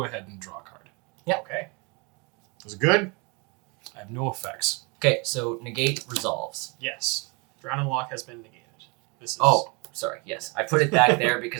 ahead and draw a card. Okay. Was it good? I have no effects. Okay, so negate resolves. Yes. Drown and Lock has been negated. This is Oh, sorry. Yes, I put it back there because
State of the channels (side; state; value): left; quieter; 30.1 dB